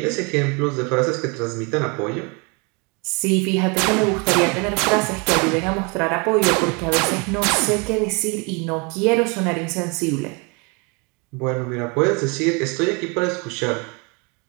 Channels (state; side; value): quieter; left; 31.1 dB